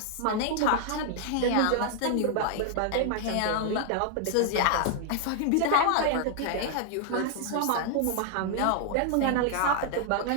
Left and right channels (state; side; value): different; both; correlation 0.00